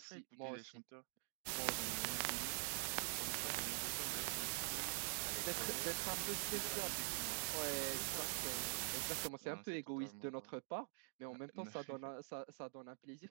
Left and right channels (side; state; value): left; silent; digital silence